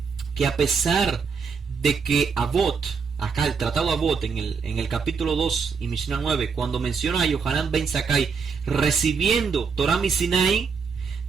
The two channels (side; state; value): left; quieter; 5.6 dB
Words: que a pesar de que Avot, acá el tratado Avot en el capítulo 2 y Mishnah 9, cuando menciona a Yohanan ben Zakkai recibiendo Torah mi Sinai,